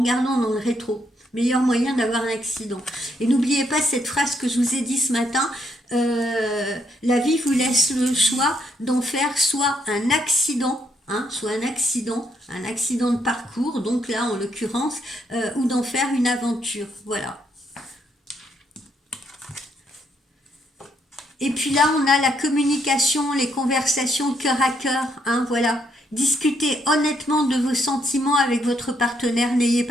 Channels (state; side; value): normal; both; correlation 0.74